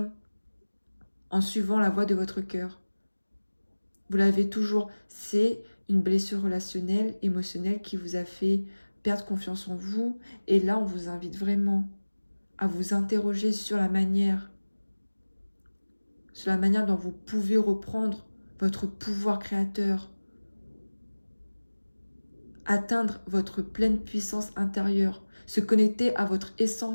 en suivant la voie de votre cœur. Vous l'avez toujours. C'est une blessure relationnelle, émotionnelle qui vous a fait perdre confiance en vous. Et là, on vous invite vraiment à vous interroger sur la manière dont vous pouvez reprendre votre pouvoir créateur, atteindre votre pleine puissance intérieure, se connecter à votre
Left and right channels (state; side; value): inverted; both; correlation -1.00